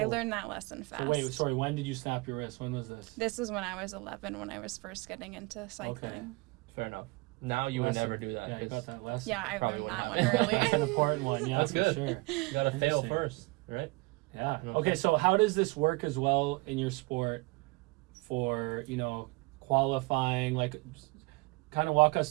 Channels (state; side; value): quieter; left; 25.2 dB